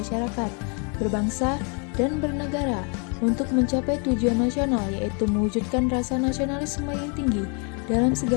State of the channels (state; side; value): quieter; right; 36.6 dB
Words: berbangsa, dan bernegara untuk mencapai tujuan nasional, yaitu mewujudkan rasa nasionalisme yang tinggi dalam